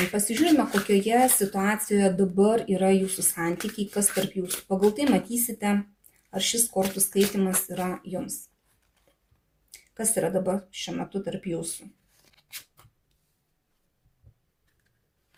Pasižiūrime, kokioje situacijoje dabar yra jūsų santykiai, kas tarp jūsų. Pagal tai matysite, ar šis kortų skaitimas yra jums. Kas yra dabar šiuo metu tarp jūsų?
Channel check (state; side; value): identical; both; correlation 1.00